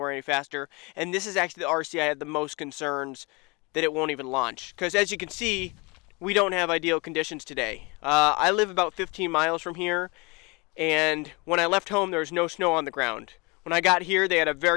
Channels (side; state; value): right; quieter; 27.3 dB